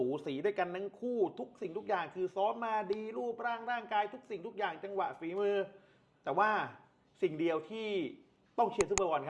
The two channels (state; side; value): identical; both; correlation 1.00